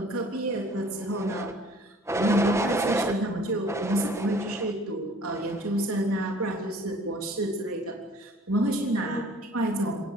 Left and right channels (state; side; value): normal; both; correlation 0.52